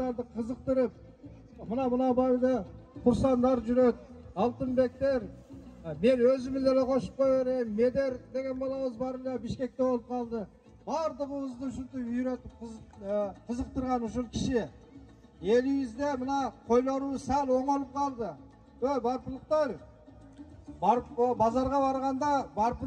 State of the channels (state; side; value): identical; both; correlation 1.00